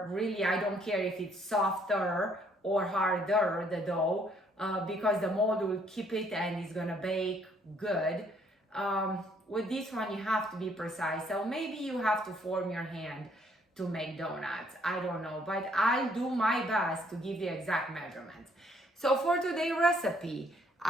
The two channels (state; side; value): normal; both; correlation 0.66